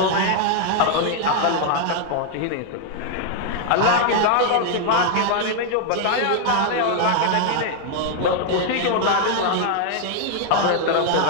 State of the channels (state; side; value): different; both; correlation 0.00